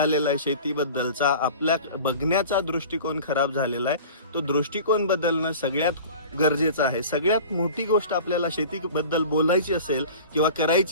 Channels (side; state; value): both; inverted; correlation -0.39